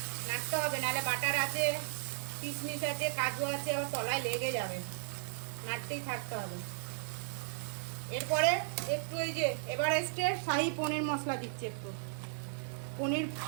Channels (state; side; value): silent; left; digital silence